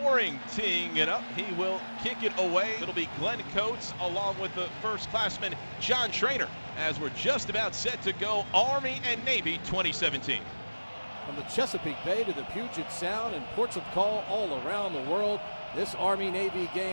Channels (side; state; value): both; inverted; correlation -1.00